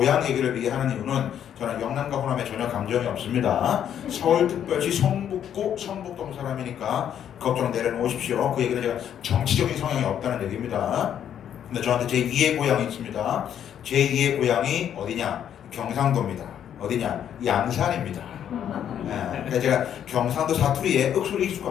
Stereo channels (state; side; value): quieter; right; 9.6 dB